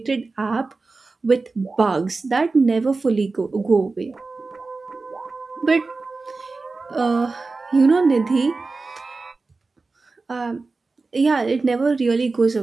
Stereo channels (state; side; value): quieter; left; 3.8 dB